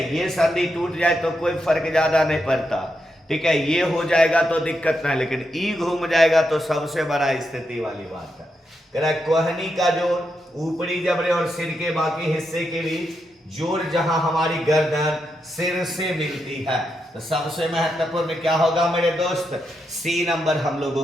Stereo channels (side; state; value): both; normal; correlation 0.84